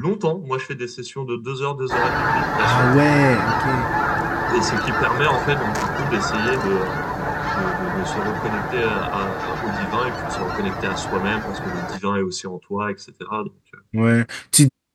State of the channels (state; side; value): identical; both; correlation 1.00